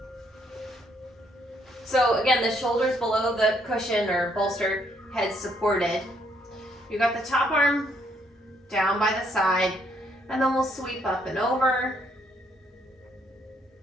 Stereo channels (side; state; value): both; normal; correlation 0.70